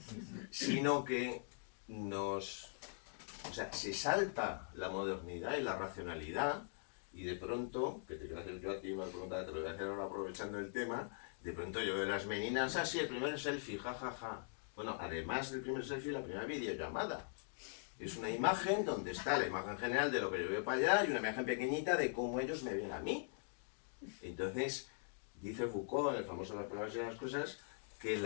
sino que o sea, se salta la modernidad y la racionalidad, y de pronto, que te voy a hacer yo a ti una pregunta, te lo voy a hacer ahora aprovechando el tema, de pronto yo veo las meninas, así el primer selfie, jajaja. Bueno, además del primer selfie, la primera videollamada. Es una imagen donde está la imagen general de lo que yo veo para allá y una imagen pequeñita de cómo ellos me ven a mí. Entonces, dice Foucault, en el famoso Las palabras y las cosas, que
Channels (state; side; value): silent; right; digital silence